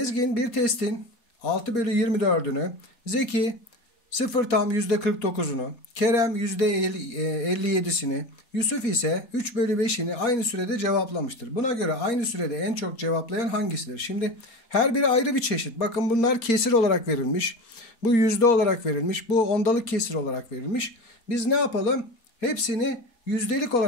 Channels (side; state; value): right; late; 4.2 ms